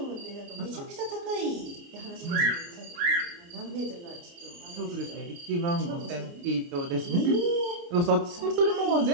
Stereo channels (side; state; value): left; late; 29 ms